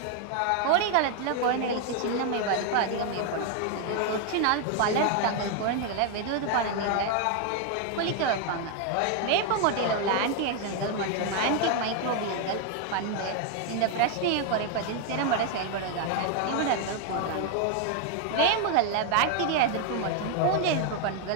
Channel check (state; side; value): different; both; correlation 0.01